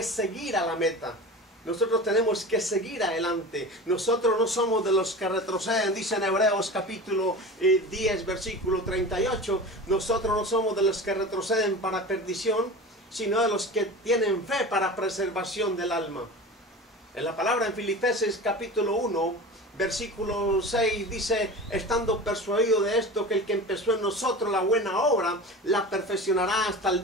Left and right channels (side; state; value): both; normal; correlation 0.33